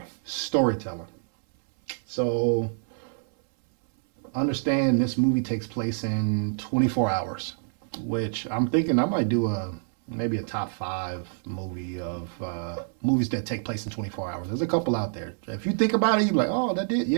storytelling. So understand this movie takes place in 24 hours, which I'm thinking I might do maybe a top 5 movie of movies that take place in 24 hours. There's a couple out there. If you think about it, you're like, oh, that did,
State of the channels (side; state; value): left; silent; 60 dB below the other